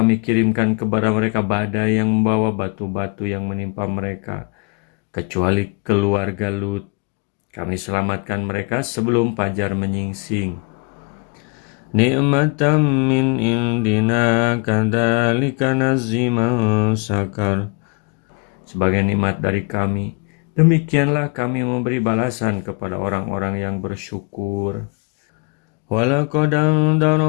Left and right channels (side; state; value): right; quieter; 33.0 dB